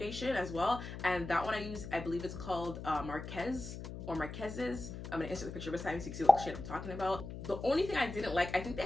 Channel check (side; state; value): left; noise; hum, 9 dB below the sound